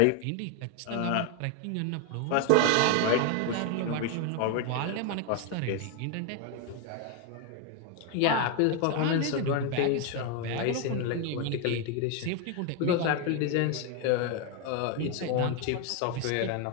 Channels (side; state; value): both; different; correlation 0.01